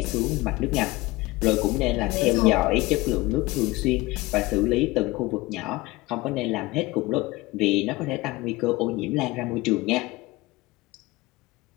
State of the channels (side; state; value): right; quieter; 20.9 dB